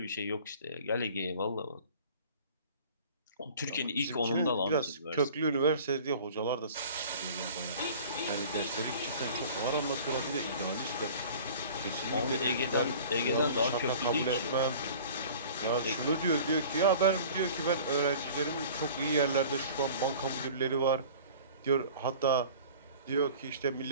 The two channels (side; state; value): both; inverted; correlation -0.44